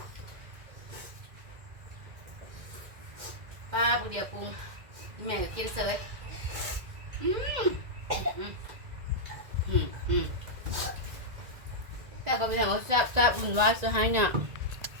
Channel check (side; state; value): left; late; 2.1 ms